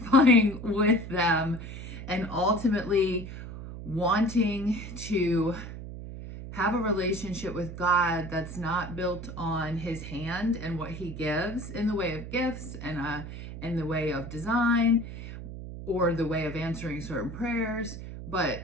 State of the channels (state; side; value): noise; right; hum, 10 dB below the sound